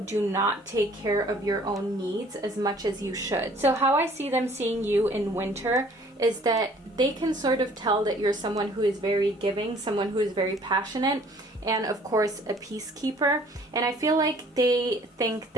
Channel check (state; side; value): normal; both; correlation 0.55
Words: do not take care of your own needs as much as you should. So how I see them seeing you in Winter is that they can sort of tell that you're someone who is very giving, someone who is very passionate, and of course a peacekeeper. And I feel like they think